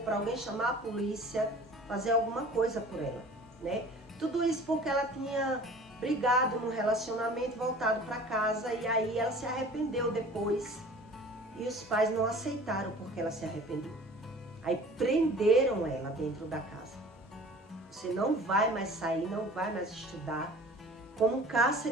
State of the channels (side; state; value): both; normal; correlation 0.45